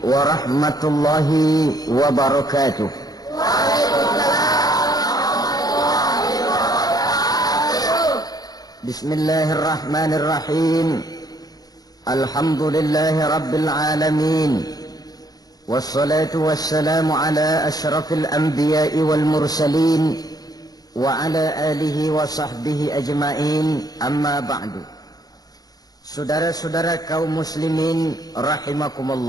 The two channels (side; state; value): right; late; 0.19 ms